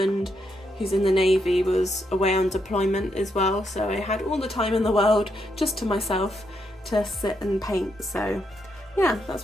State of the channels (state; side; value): normal; both; correlation 0.79